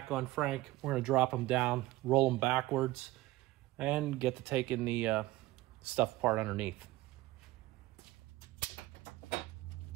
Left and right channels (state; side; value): quieter; left; 17.5 dB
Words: on Frank. We're going to drop them down, roll them backwards, and get to taking the stuff apart underneath.